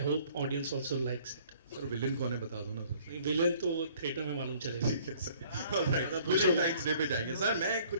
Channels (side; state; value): both; inverted; correlation -0.57